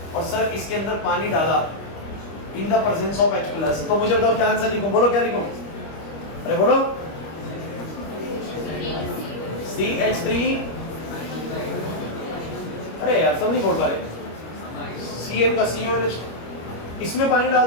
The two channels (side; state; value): right; late; 25 ms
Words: और सर इसके अंदर पानी डाला in the presence of H+, तो मुझे बताओ क्या आंसर लिखूं? बोलो क्या लिखूं? अरे बोलो CH3, अरे यार सब नहीं बोल पा रहे। CN का CONH, इसमें पानी